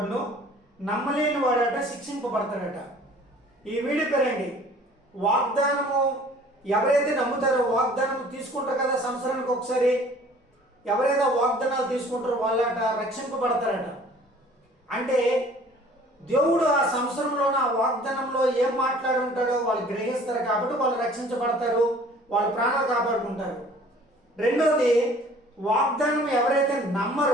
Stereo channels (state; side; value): normal; both; correlation 0.51